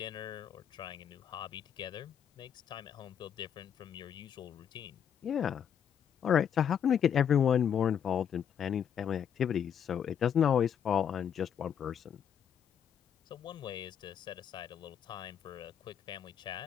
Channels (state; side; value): quieter; right; 8.5 dB